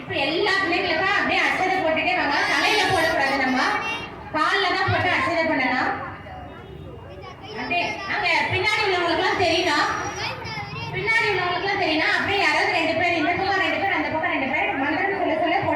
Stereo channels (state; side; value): identical; both; correlation 1.00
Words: இப்ப எல்லா பிள்ளைங்களுக்கும் அப்படியே அச்சதை போட்டுட்டே வாங்க. தலையில போடக்கூடாது, நம்ம காலில் தான் போட்டு அச்சதை பண்ணலாம். அப்படியே அங்க பின்னாடி உள்ளவங்களுக்குலாம் தெரியணும், அப்படியே யாராவது 2 பேர் இந்த பக்கம் 2 பேர் அந்த பக்கம் 2 பேர் மந்திரம் சொல்ல சொல்ல